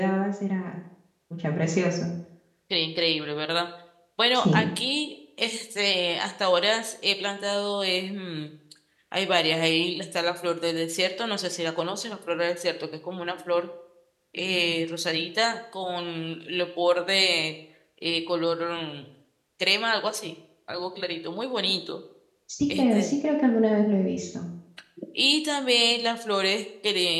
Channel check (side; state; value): both; identical; correlation 1.00